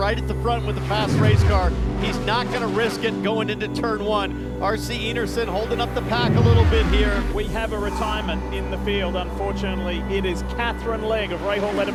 at the front with a fast race car. He's not going to risk it going into turn 1. R.C. Enerson holding up the pack a little bit here. We have a retirement in the field, unfortunately. It is Catherine Legg of Rahal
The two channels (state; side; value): identical; both; correlation 1.00